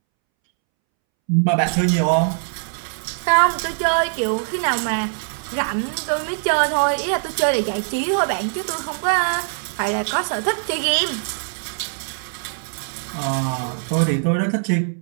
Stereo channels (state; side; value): silent; left; 64 dB below the other